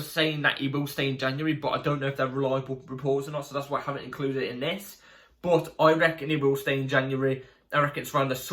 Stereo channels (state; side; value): identical; both; correlation 1.00